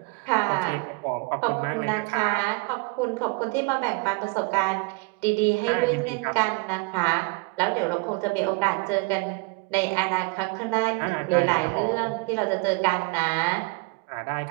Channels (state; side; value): quieter; left; 29.6 dB